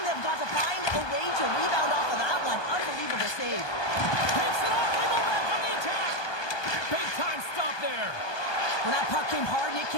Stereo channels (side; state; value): right; late; 1.2 ms